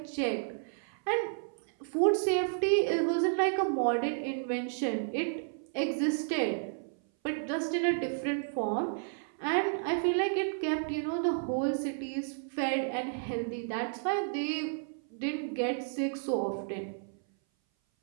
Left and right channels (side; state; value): left; silent; 56 dB below the other